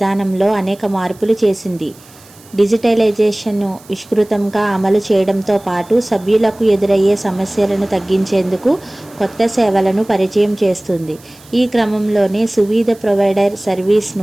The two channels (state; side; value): noise; right; hiss, 25 dB below the sound